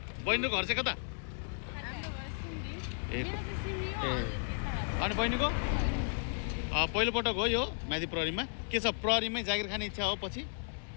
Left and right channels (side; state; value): right; silent; digital silence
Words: चाहिँ कता ए अनि बहिनीको पहिलो पटक हो यो म्यादी प्रहरीमा के छ प्रहरीमै जागिर खाने इच्छा हो पछि